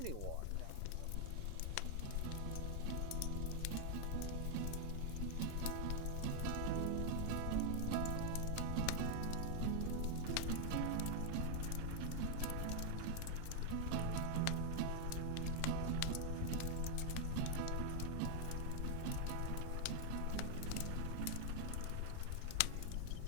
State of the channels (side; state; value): both; different; correlation 0.00